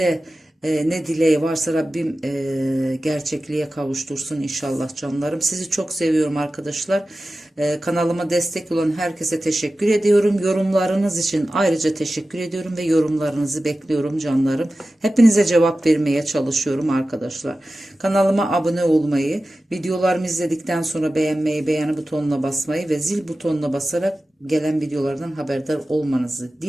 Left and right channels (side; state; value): both; normal; correlation 0.95